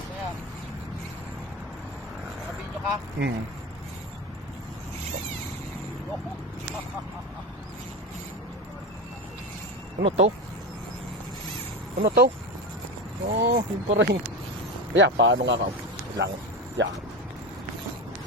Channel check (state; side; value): normal; both; correlation 0.22